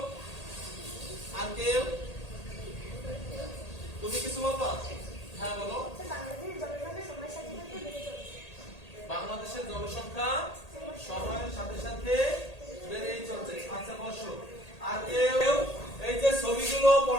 আর কেউ? তুমি কিছু বলবা? হ্যাঁ বলো। বাংলাদেশের জনসংখ্যা সময়ের সাথে সাথে বেড়েই চলছে। বাংলাদেশের জনসংখ্যা সময়ের সাথে সাথে বেড়েই চলছে। আচ্ছা বসো। আর কেউ এই যে ছবিগুলো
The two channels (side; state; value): right; late; 1.8 ms